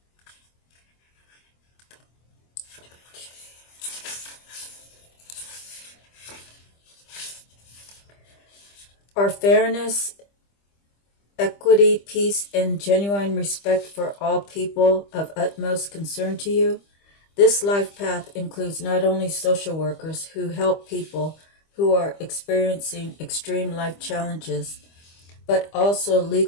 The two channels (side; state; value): right; late; 25 ms